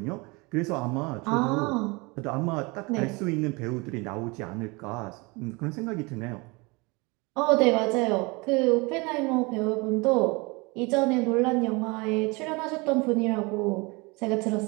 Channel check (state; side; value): quieter; left; 26.7 dB